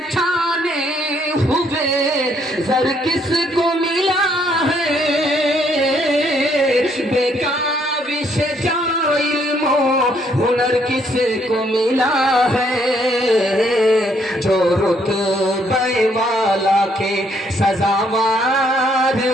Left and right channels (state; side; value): normal; both; correlation 0.69